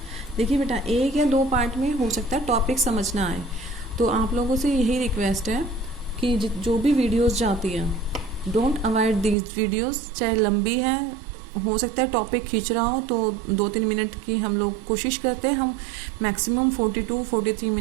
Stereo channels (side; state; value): left; drops out; at 9.3 s